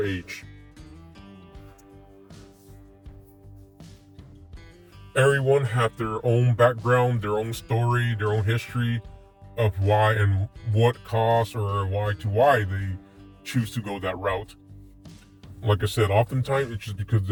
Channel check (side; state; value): both; identical; correlation 1.00